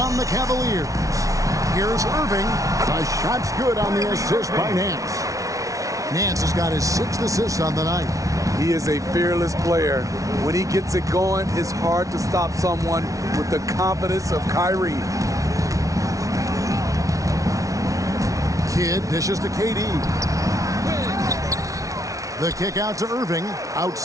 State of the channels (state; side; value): late; left; 0.17 ms